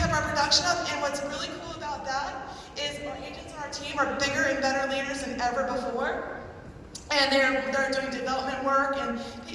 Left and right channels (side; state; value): both; identical; correlation 1.00